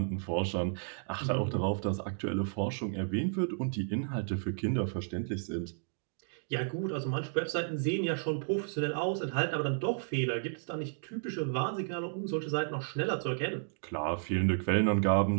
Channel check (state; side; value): silent; left; digital silence